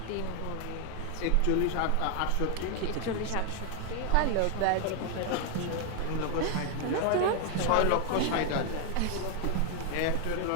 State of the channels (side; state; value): both; different; correlation 0.01